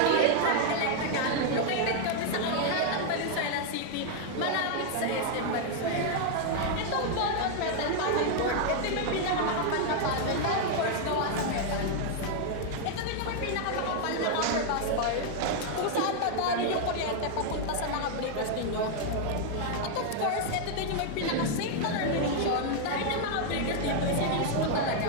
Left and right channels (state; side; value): different; both; correlation 0.00